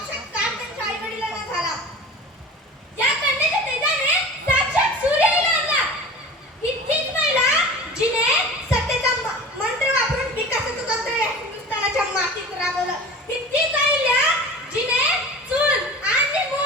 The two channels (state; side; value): normal; both; correlation 0.37